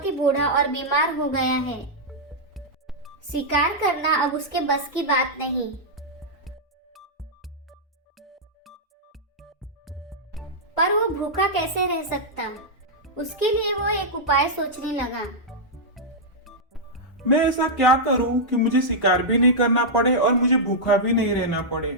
ही बूढ़ा और बीमार हो गया है। शिकार करना अब उसके बस की बात नहीं। पर वो भूखा कैसे रह सकता? उसके लिए वो एक उपाय सोचने लगा। मैं ऐसा क्या करूं कि मुझे शिकार भी नहीं करना पड़े और मुझे भूखा भी नहीं रहना पड़े।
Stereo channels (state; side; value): normal; both; correlation -0.08